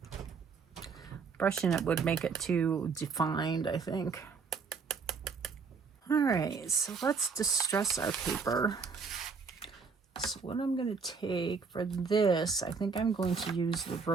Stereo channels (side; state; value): left; quieter; 5.2 dB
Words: Brushing it would make it too defined, I think. All right, so let's distress our paper. So what I'm going to take for this, I think I'm going to use the